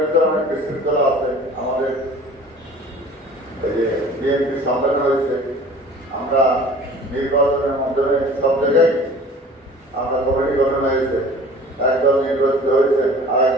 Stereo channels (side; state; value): both; normal; correlation 0.45